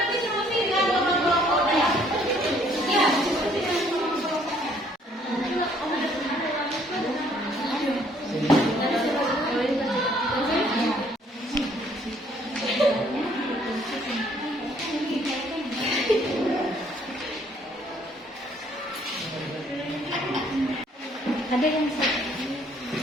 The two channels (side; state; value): both; normal; correlation 0.63